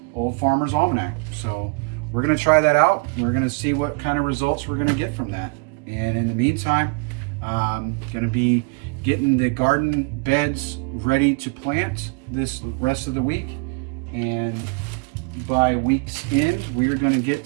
Old Farmer's Almanac. So we're gonna try that out. We're gonna see what kind of results we're gonna get from that. And in the meantime, I'm gonna be getting the garden beds ready to plant this rest of the week. And by week's end, we're gonna get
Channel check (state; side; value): quieter; left; 31.8 dB